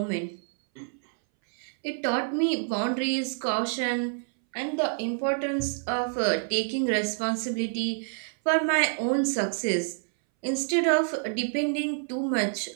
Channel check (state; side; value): silent; left; 60 dB below the other